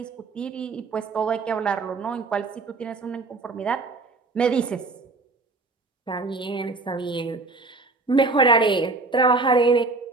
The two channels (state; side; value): quieter; left; 3.6 dB